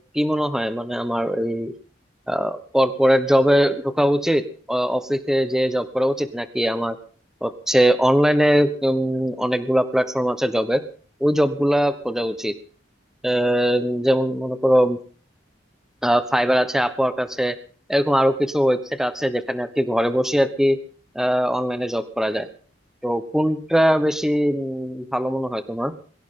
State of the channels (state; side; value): normal; both; correlation 0.95